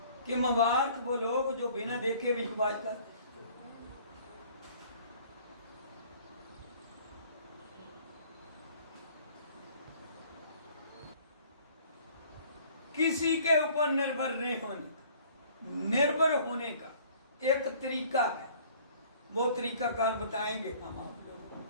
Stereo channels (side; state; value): both; inverted; correlation -0.54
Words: कि मुबारक वो लोग जो बिना देखे विश्वास करते। किसी के ऊपर निर्भर नहीं होने, निर्भर होने का एक तरीका है, वो तरीका कार बताएंगे हम आप लोगों